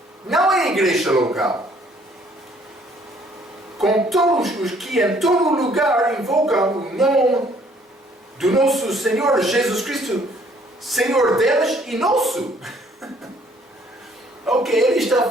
Não é a igreja local. Com todos os que em todo lugar invocam o nome do nosso Senhor Jesus Cristo, Senhor deles e nosso. Ok, ele está a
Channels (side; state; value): both; normal; correlation 0.62